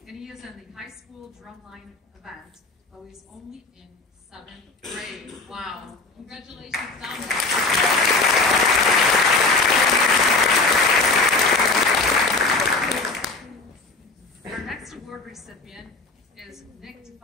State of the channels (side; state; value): right; quieter; 3.4 dB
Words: and he is in the high school drumline event, though he's only in 7th grade. Wow. Congratulations, Dominic. Our next award recipient is Nick